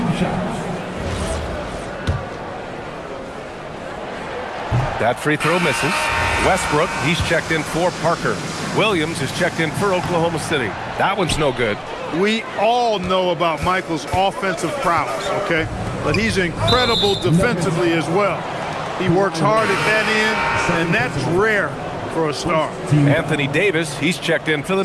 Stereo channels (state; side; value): identical; both; correlation 1.00